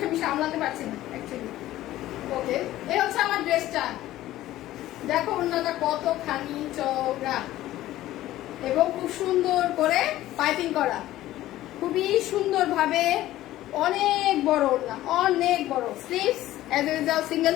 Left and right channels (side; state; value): right; quieter; 14.9 dB